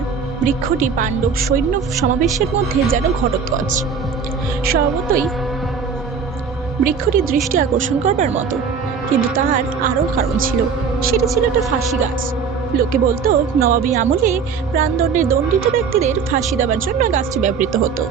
বৃক্ষটি পাণ্ডব সৈন্য সমাবেশের মধ্যে যেন ঘটোৎকচ। স্বভাবতই বৃক্ষটি দৃষ্টি আকর্ষণ করবার মতো, কিন্তু তার আরও কারণ ছিল। সেটা ছিল একটা ফাঁসি গাছ। লোকে বলতো নবাবী আমলে প্রাণদণ্ডে দণ্ডিত ব্যক্তিদের ফাঁসি দেওয়ার জন্য গাছটি ব্যবহৃত হতো।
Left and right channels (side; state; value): left; quieter; 6.0 dB